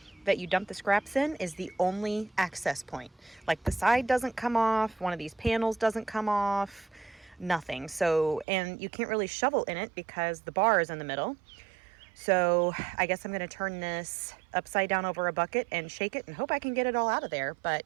that you dump the scraps in is the only access point. Like the side doesn't come off, one of these panels doesn't come off, nothing. So, and you can't really shovel in it because the bar is in the middle. So I guess I'm going to turn this upside down over a bucket and shake it and hope I can get it all out of there.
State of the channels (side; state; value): left; drops out; at 8.5 s